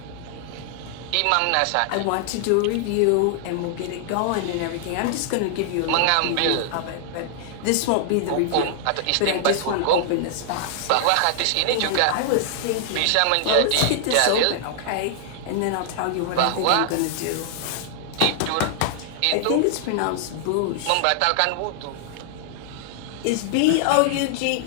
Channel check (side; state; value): both; different; correlation -0.01